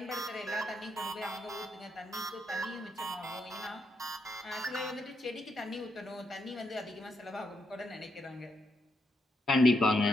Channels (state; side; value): normal; both; correlation 0.80